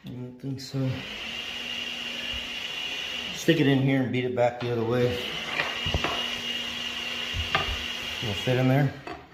I don't think so. Stick it in here and beat it back the other way. Will it fit in there?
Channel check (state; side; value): identical; both; correlation 1.00